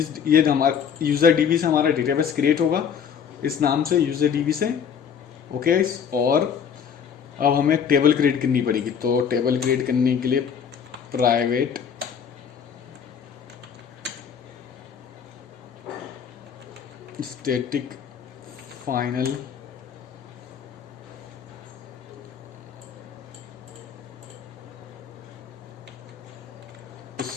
हमारा यूज़र डीबी से हमारा डेटाबेस क्रिएट होगा इस नाम से, यूज़र डीबी से। ओके, और अब हमें टेबल क्रिएट करनी पड़ेगी। तो टेबल क्रिएट करने के लिए private static final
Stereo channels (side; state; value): right; quieter; 7.5 dB